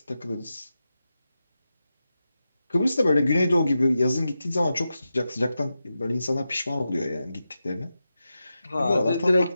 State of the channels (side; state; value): both; inverted; correlation -0.91